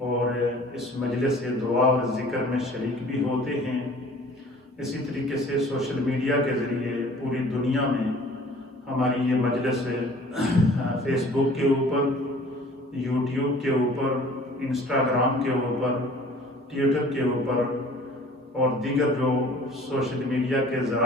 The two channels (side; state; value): both; normal; correlation 0.49